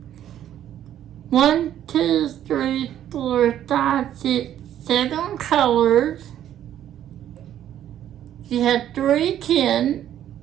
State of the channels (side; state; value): left; quieter; 11.1 dB